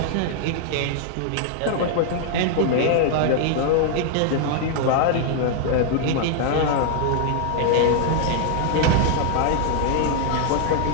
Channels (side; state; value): both; different; correlation 0.00